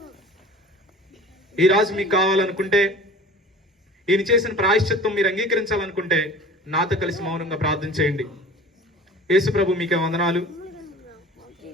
ఈ రాజు మీకు కావాలనుకుంటే, ఈయన చేసిన ప్రాయశ్చిత్తం మీరు అంగీకరించాలనుకుంటే నాతో కలిసి మౌనంగా ప్రార్థన చేయండి. యేసు ప్రభు మీకే వందనాలు.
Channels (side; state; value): both; normal; correlation 0.42